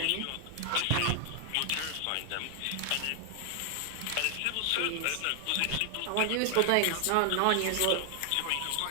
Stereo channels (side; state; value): both; different; correlation 0.00